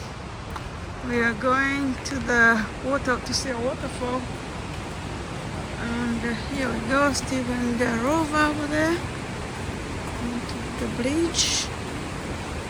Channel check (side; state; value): both; identical; correlation 1.00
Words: We are going to the water to see a waterfall. And here we go, Stephen the rover over there. Onto the bridge.